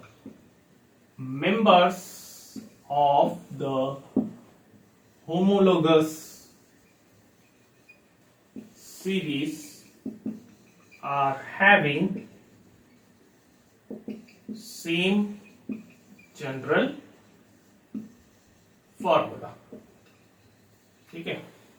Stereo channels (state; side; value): identical; both; correlation 1.00